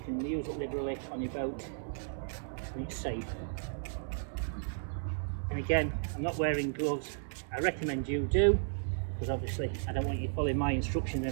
can use it liberally on your boat and it's safe. And again, I'm not wearing gloves. I recommend you do, because obviously I don't want you following my instructions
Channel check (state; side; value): silent; left; 55 dB below the other